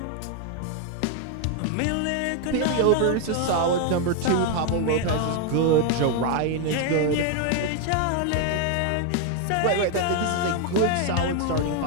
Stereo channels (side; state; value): both; different; correlation 0.01